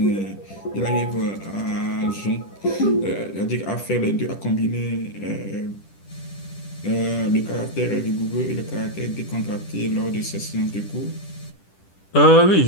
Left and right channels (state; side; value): late; right; 10 ms